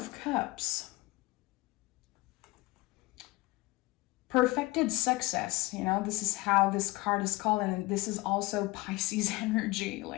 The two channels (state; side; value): quieter; right; 21.6 dB